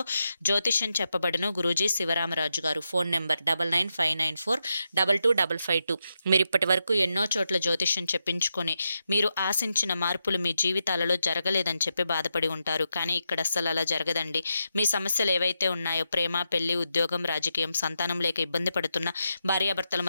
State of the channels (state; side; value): inverted; both; correlation -0.86